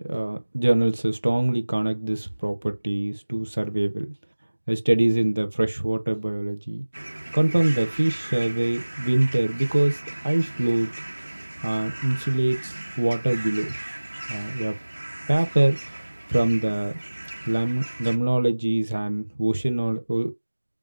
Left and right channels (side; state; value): both; inverted; correlation -1.00